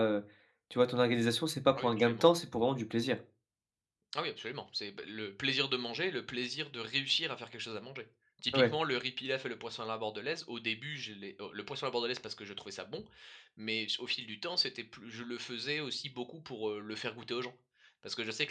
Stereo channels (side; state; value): both; identical; correlation 1.00